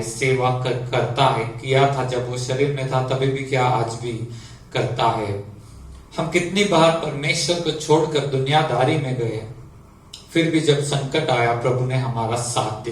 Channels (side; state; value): both; identical; correlation 1.00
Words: सेवा करता है। किया था जब वो शरीर में था, तभी भी क्या, आज भी करता है। हम कितनी बार परमेश्वर को छोड़कर दुनियादारी में गए, फिर भी जब संकट आया प्रभु ने हमारा साथ